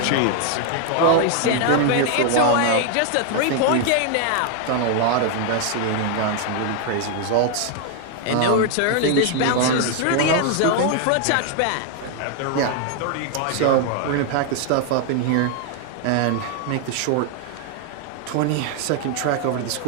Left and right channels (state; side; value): different; both; correlation 0.00